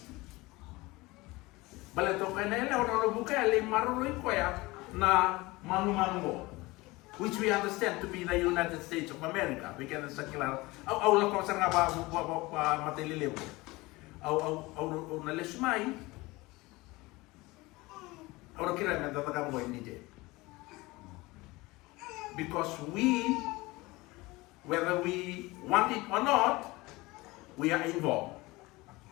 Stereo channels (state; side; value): quieter; right; 21.7 dB